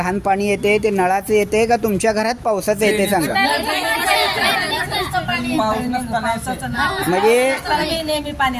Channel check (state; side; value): identical; both; correlation 1.00